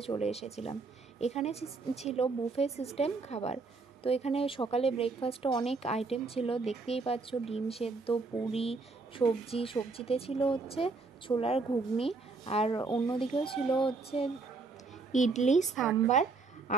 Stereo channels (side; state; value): left; quieter; 4.0 dB